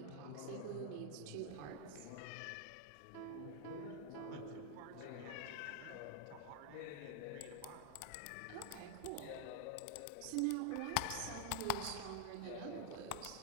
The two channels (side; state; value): both; different; correlation 0.00